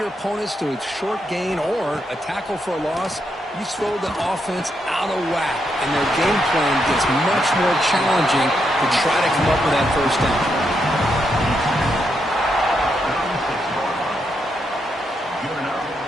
opponents to a short gain or a tackle for a loss, you throw the offense out of whack, and their game plan gets much more challenging to try to come up with that first down.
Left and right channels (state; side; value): normal; both; correlation 0.81